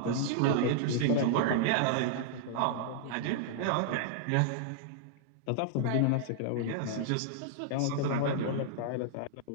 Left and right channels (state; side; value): different; both; correlation -0.01